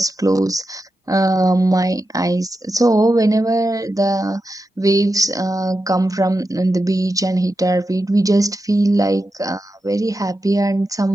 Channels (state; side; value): normal; both; correlation 0.89